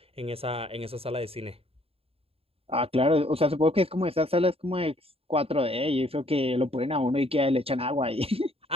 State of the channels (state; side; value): late; left; 0.28 ms